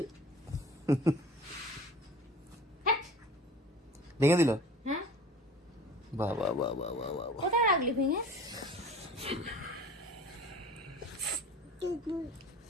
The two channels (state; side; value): normal; both; correlation 0.43